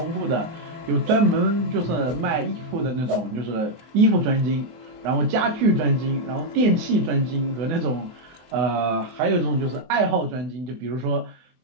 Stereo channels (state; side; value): late; left; 24 ms